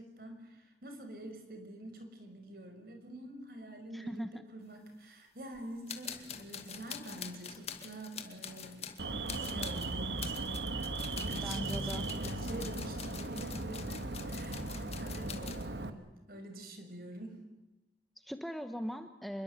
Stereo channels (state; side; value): normal; both; correlation 0.49